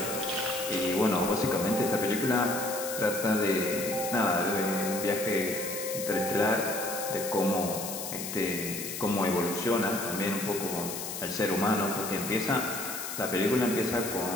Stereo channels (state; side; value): noise; left; hiss, 6 dB below the sound